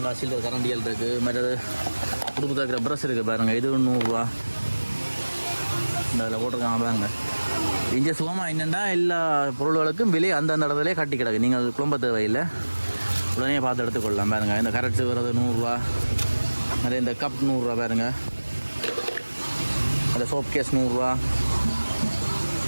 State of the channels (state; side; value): inverted; both; correlation -1.00